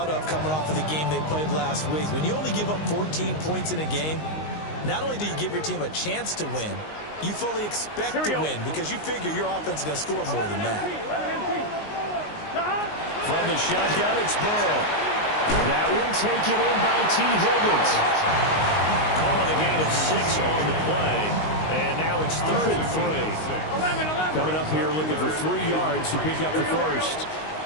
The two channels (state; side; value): late; right; 19 ms